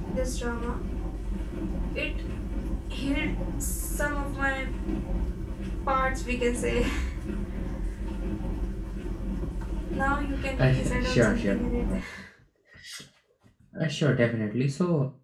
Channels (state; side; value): identical; both; correlation 1.00